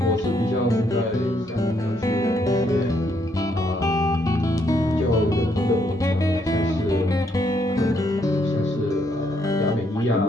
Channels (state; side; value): normal; both; correlation 0.73